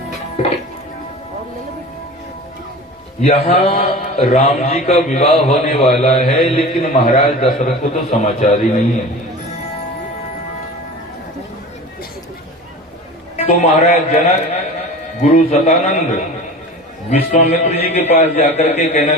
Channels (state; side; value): normal; both; correlation 0.36